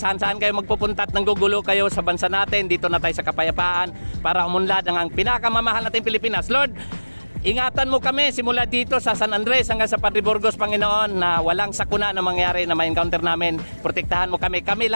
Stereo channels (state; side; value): inverted; both; correlation -1.00